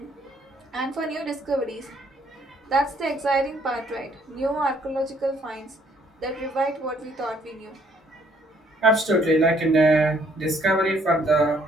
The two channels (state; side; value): normal; both; correlation 0.65